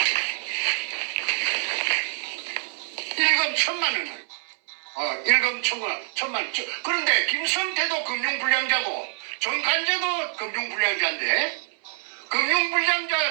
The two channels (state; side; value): silent; left; 61 dB below the other